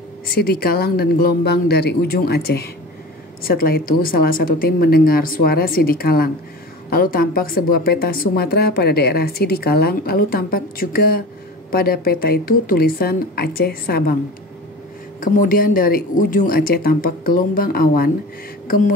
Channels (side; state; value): both; normal; correlation 0.35